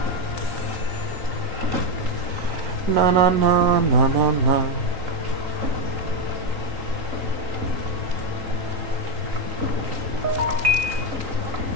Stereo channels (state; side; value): late; left; 3.8 ms